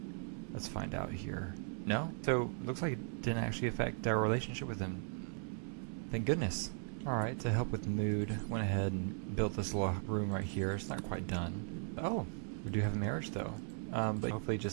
Let's find out here. No? So, looks like it didn't actually affect our relationship with him. Thank goodness. Alright, to help with the mood, went ahead and built this little room right here. It's not quite done. Oh, we do have a marriage though. But hopefully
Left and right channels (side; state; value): left; silent; 53 dB below the other